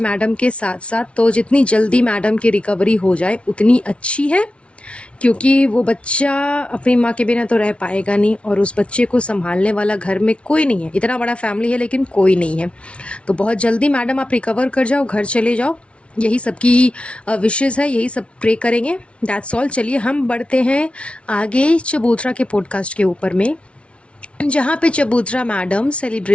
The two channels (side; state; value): right; late; 0.060 ms